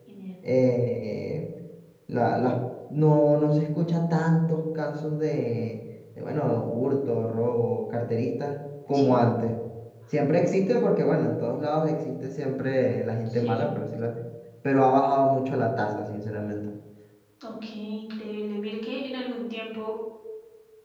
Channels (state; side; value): identical; both; correlation 1.00